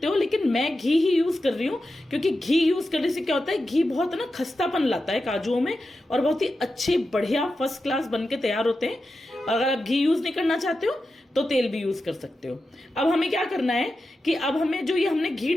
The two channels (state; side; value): normal; both; correlation 0.91